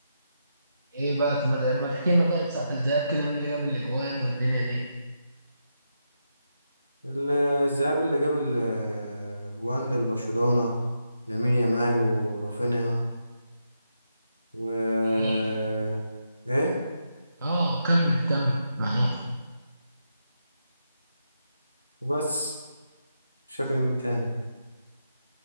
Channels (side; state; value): both; inverted; correlation -0.84